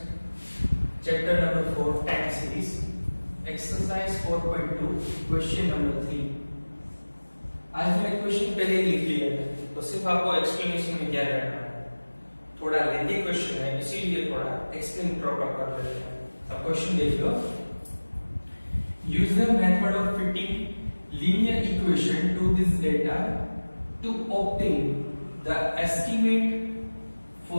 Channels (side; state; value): both; inverted; correlation -1.00